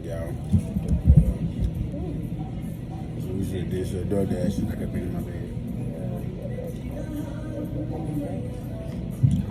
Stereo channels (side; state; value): both; identical; correlation 1.00